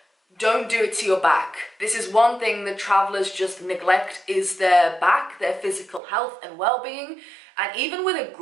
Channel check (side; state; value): left; drops out; at 6.0 s